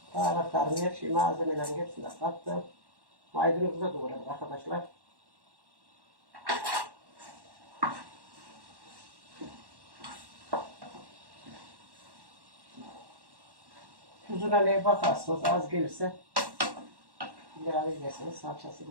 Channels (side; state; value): left; late; 1.1 ms